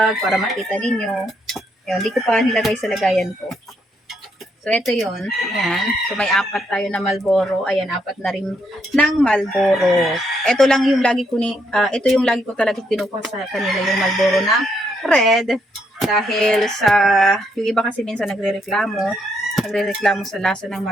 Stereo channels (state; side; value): normal; both; correlation 0.75